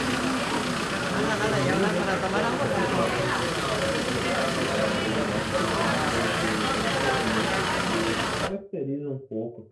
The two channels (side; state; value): both; identical; correlation 1.00